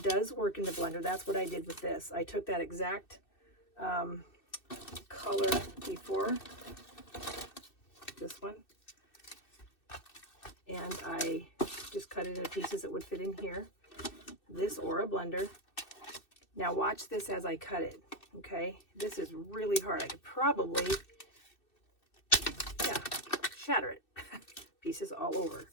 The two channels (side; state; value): right; late; 2.6 ms